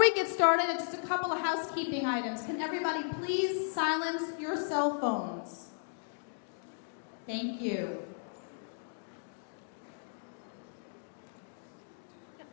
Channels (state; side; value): silent; right; digital silence